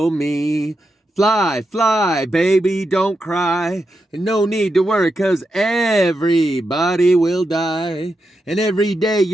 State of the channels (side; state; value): both; normal; correlation 0.86